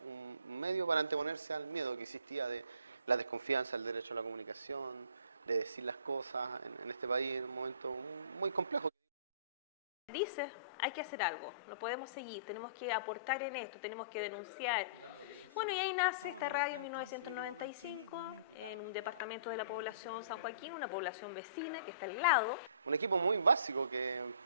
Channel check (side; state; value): both; inverted; correlation -0.51